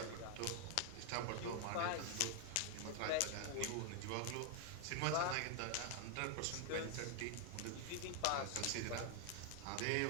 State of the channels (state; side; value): different; both; correlation 0.00